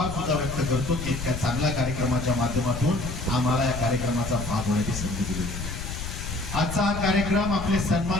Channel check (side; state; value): left; noise; rumble, 7 dB below the sound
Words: सुद्धा व्यक्त करतो की इतक्या चांगल्या कार्यक्रमाच्या माध्यमातून आम्हाला या कार्यक्रमाचा भाग होण्याची संधी दिली। आजचा हा कार्यक्रम आपले